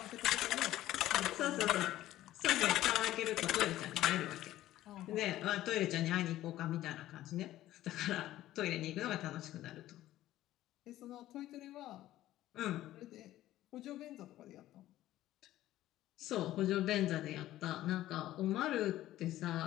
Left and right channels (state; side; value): quieter; right; 14.5 dB